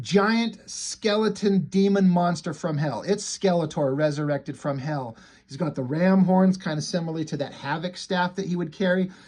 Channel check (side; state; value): both; identical; correlation 1.00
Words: skeleton demon monster from hell. It's Skeletor resurrected from hell. He's got the ram horns, kind of similarly to that Havoc staff that he would carry.